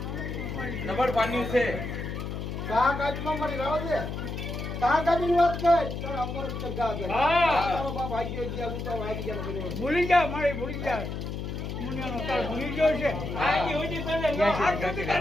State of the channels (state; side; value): noise; left; hum, 5 dB below the sound